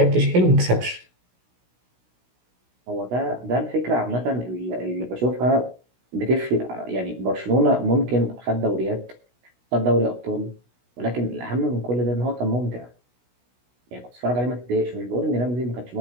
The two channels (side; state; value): left; late; 16 ms